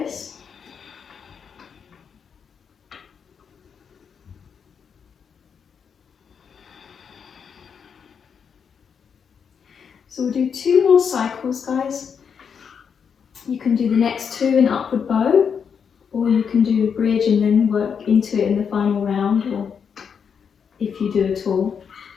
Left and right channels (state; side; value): quieter; right; 6.8 dB